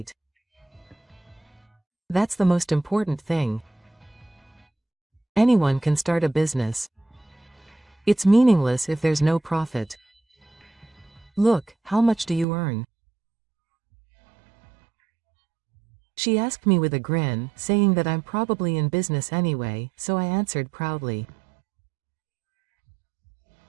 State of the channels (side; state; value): left; drops out; at 12.5 s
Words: That's the most important thing. Anyone can start a business. It's meaningless if there's no profit. Look, how much do you earn? She asked me with a grin, saying that I'm probably in business anyway, so I answered proudly.